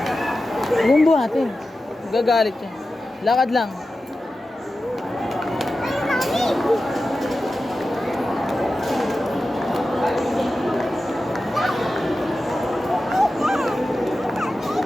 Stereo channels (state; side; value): normal; both; correlation 0.93